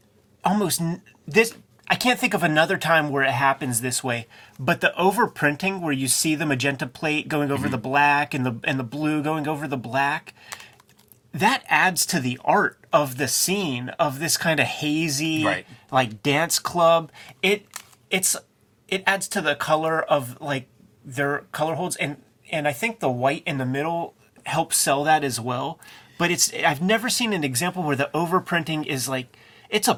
I can't think of another time where it happens this way, but the overprinting where you see the magenta plate going over the black and the blue going over the black, that adds to the art of the scene of this kind of hazy, like dance club. It adds to the color of like their color holds, and I think the white in the middle helps sell that as well. But I've never seen an example where the overprinting is like, it's a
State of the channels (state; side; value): identical; both; correlation 1.00